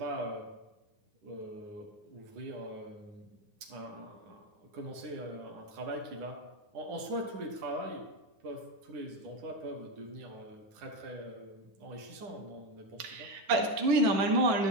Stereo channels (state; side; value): late; left; 9.7 ms